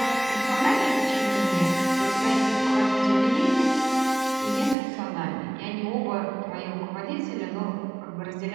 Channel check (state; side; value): drops out; left; at 4.8 s